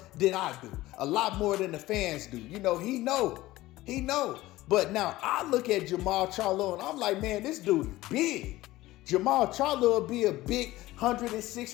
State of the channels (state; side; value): quieter; right; 17.4 dB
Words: than I do, a lot more than the fans do. He know. But now I look at Jermall Charlo and I'm like, man, this dude is big. Jermall Charlo will be a big